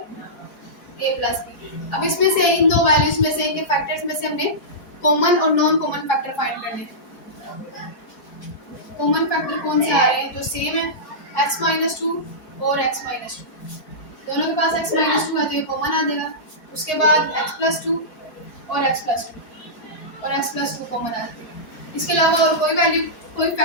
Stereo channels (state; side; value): late; right; 4.5 ms